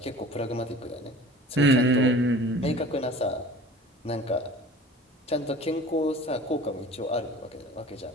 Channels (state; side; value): normal; both; correlation 0.43